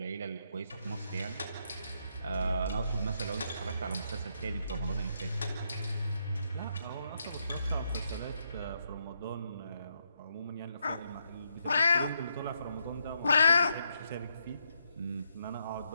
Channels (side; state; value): both; inverted; correlation -0.77